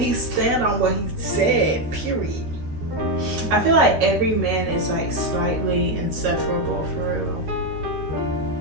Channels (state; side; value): late; left; 13 ms